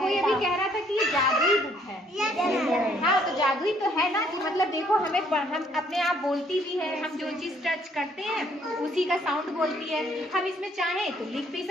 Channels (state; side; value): normal; both; correlation 0.65